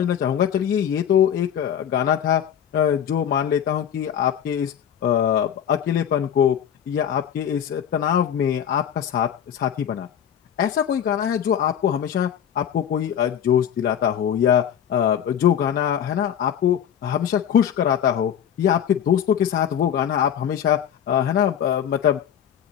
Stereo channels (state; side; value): quieter; right; 9.2 dB